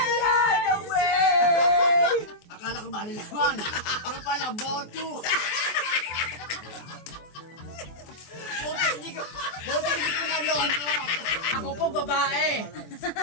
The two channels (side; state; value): right; late; 24 ms